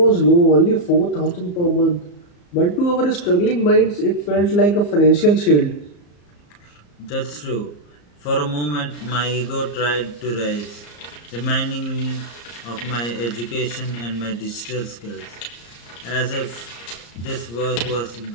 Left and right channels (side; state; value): right; late; 34 ms